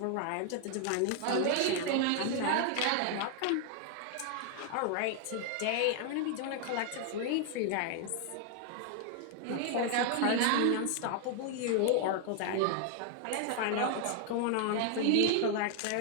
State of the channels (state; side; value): different; both; correlation 0.00